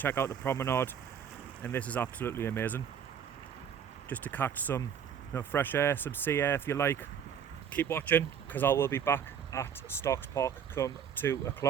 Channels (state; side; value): quieter; left; 8.1 dB